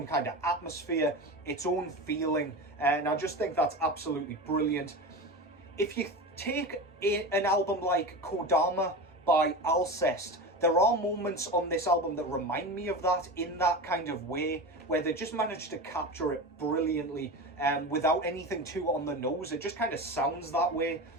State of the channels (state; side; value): normal; both; correlation 0.26